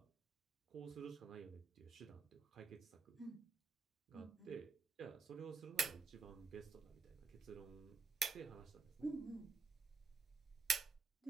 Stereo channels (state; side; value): quieter; left; 4.6 dB